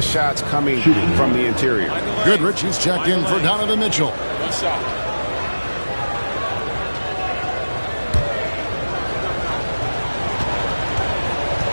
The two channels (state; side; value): inverted; both; correlation -1.00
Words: shots coming from the interior. Goodrich, he's checked in for Donovan Mitchell.